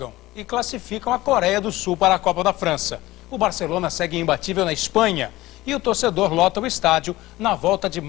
e classificam a Coreia do Sul para a Copa da França. O Barcelona segue imbatível na Espanha e o torcedor lota o estádio na volta de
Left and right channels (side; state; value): right; quieter; 17.9 dB